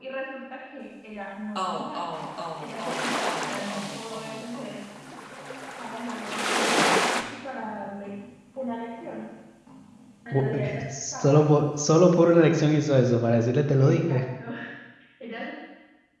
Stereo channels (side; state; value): both; identical; correlation 1.00